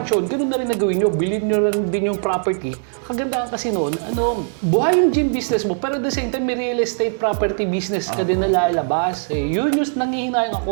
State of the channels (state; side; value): silent; left; 65 dB below the other